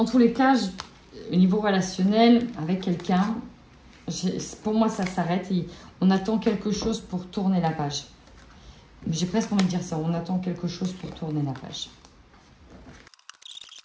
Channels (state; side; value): identical; both; correlation 1.00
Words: tous les cas, au niveau relationnel, avec quelqu'un, pour moi, ça s'arrête et on attend quelque chose pour tourner la page. J'ai presque envie de dire ça, on attend quelque chose pour tourner la page.